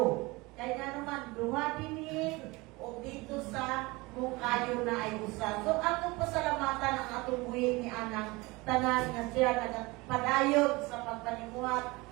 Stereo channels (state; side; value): quieter; left; 23.5 dB